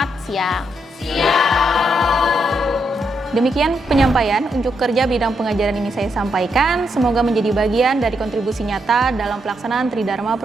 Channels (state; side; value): normal; both; correlation 0.79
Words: siang. Demikian penyampaian unjuk kerja bidang pengajaran ini saya sampaikan. Semoga menjadi bagian dari kontribusi nyata dalam pelaksanaan Tridharma